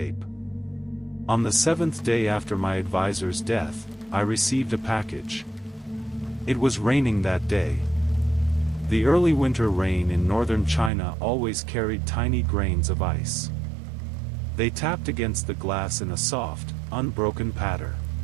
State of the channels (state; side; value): drops out; left; at 10.9 s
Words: On the 7th day after my advisor's death, I received a package. It was raining that day. The early winter rain in northern China always carried tiny grains of ice. They tapped against the glass in a soft, unbroken patter.